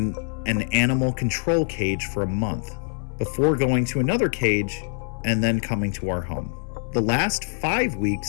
an animal control cage for a month, before going to another cage and then coming to our home. The last 5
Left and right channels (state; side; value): silent; right; 62 dB below the other